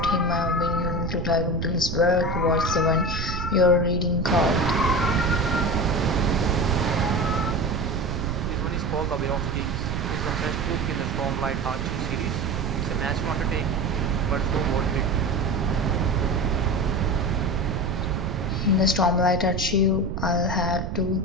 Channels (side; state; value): right; noise; rumble, 4 dB below the sound